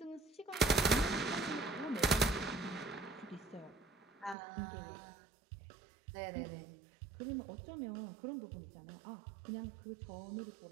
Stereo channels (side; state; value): left; drops out; at 4.4 s